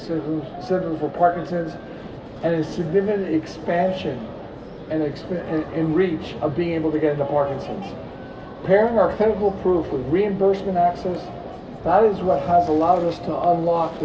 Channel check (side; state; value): both; identical; correlation 1.00